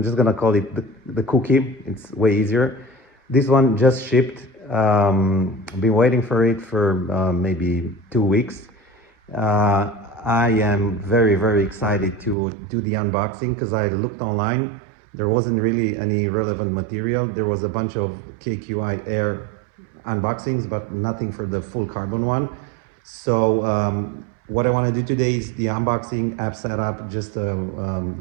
just gonna call it the cookie. It's way easier. This one just shipped. I've been waiting for it for maybe 2 weeks. I am very excited to do the unboxing because I looked online. There wasn't really any relevant material. There was a bunch of KQI Air unboxings, but nothing for the full carbon one. So what I want to do today is the unboxing, app setup, just a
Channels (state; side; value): drops out; left; at 12.4 s